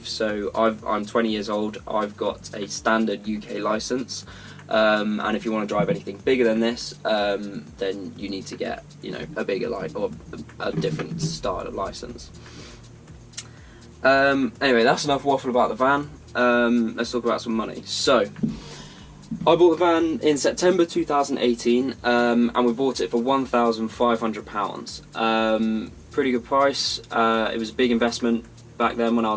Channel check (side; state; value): both; identical; correlation 1.00